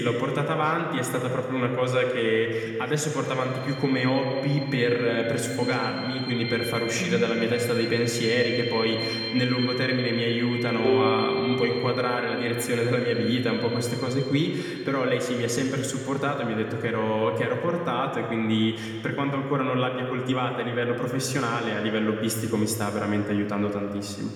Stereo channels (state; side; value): identical; both; correlation 1.00